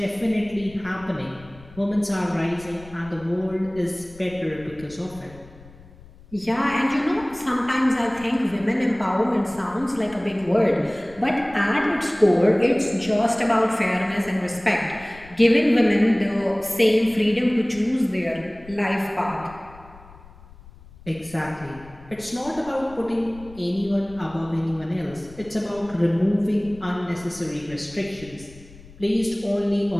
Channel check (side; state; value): left; noise; rumble, 21 dB below the sound